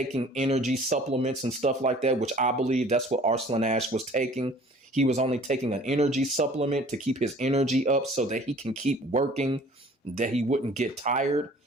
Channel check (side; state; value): both; normal; correlation 0.50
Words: energy supplements and stuff like that, which I believe that's what Arslan Ash was taking. He was only taking an energy supplement to keep his energy up so that he can keep working, that he wouldn't get tired.